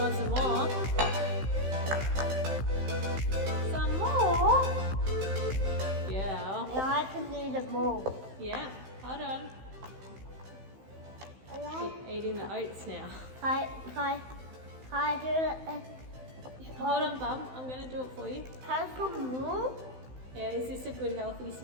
some more? Some more? Yeah. Yeah, I can do the more. Yeah. Hold on. Keep eating the oats now. Can I do it? Hold on, Bum. I'm going to do it for you. Can I put more? Yeah, is this a good healthy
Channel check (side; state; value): left; late; 15 ms